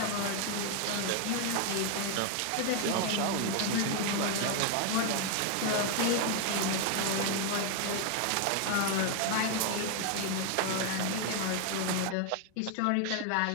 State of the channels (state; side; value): different; both; correlation 0.00